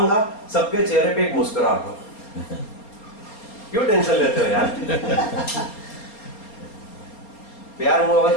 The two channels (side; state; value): right; late; 4.3 ms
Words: सबके चेहरे पे एक मुस्कुराहट हो. क्यों टेंशन लेते हो यार? प्यार मोहब्बत